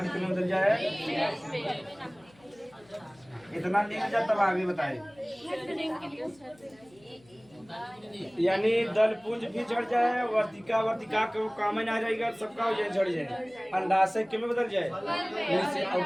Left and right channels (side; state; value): left; noise; hum, 28 dB below the sound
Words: कितने बदल जाए इतना नहीं जाए तब आगे बताए यानी दल पुंज भी झड़ जाए वर्तिका वर्तिका के काम में आ जाएगा सबका हो जाए झड़ जाए अंडाशय के में बदल जाए और